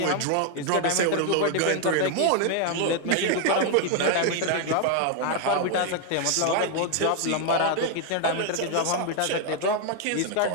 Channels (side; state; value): both; different; correlation 0.00